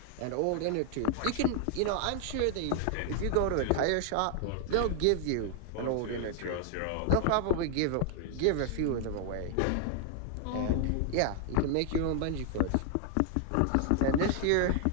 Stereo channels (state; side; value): different; both; correlation 0.00